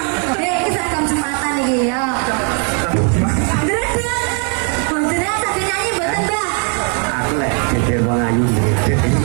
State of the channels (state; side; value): quieter; left; 39.9 dB